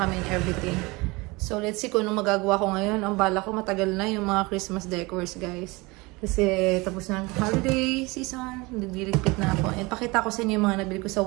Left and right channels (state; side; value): quieter; left; 24.3 dB